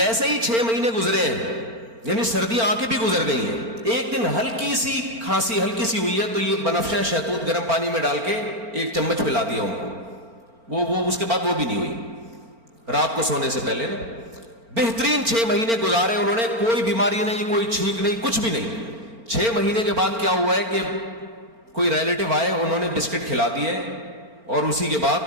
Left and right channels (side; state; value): left; late; 4.4 ms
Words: ہی 6 مہینے گزرے ہیں، یعنی سردیاں آ کے بھی گزر گئی ہیں، ایک دن ہلکی سی کھانسی ہلکی سی ہوئی ہے تو یہ بنفشہ شہتوت گرم پانی میں ڈال کے 1 چمچ پلا دیا ان کو. وہ اس کے بعد وہ بھی نہیں ہوئی رات کو سونے سے پہلے نا. بہترین 6 مہینے گزارے انہوں نے، کوئی بیماری نہیں، کوئی چھینک نہیں، کچھ بھی نہیں. 6 مہینے کے بعد کیا ہوا ہے کہ کوئی ریلیٹو آئے، انہوں نے بسکٹ کھلا دیے اور اسی کے